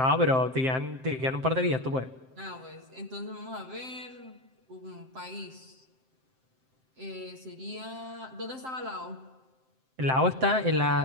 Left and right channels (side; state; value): left; late; 7.7 ms